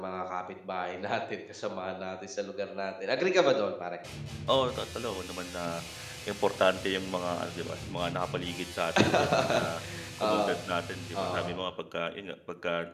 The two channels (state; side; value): identical; both; correlation 1.00